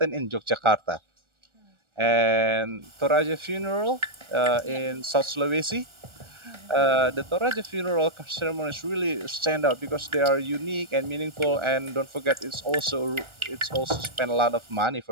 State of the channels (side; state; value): left; late; 1.4 ms